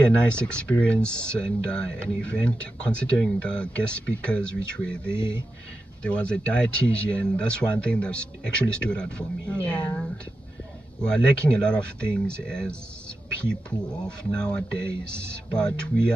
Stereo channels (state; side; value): normal; both; correlation 0.90